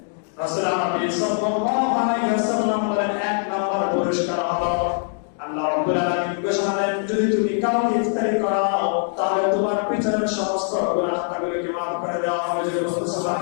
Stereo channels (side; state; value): right; silent; 58 dB below the other